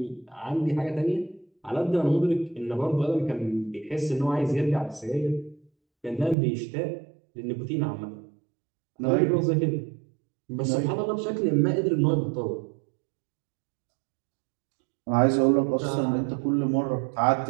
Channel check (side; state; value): left; drops out; at 6.4 s